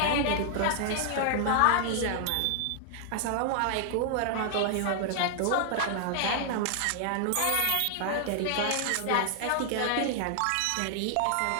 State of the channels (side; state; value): both; different; correlation 0.00